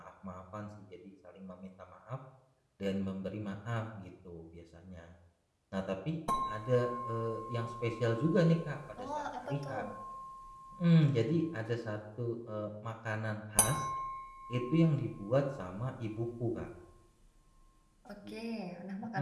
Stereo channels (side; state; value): both; identical; correlation 1.00